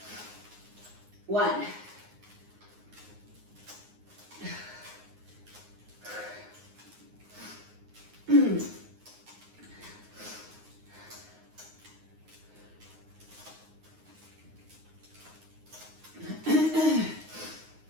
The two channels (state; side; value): late; left; 9.6 ms